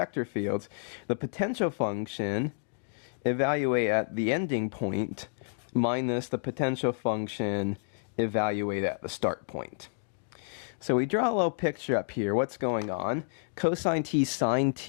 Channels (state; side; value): silent; right; digital silence